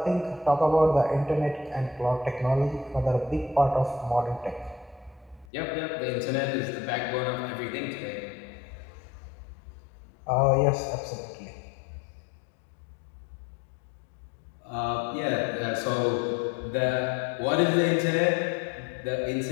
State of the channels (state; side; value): drops out; right; at 5.5 s